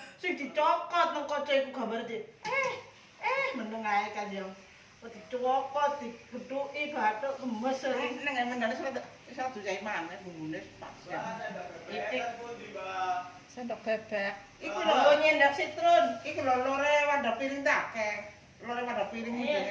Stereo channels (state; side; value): identical; both; correlation 1.00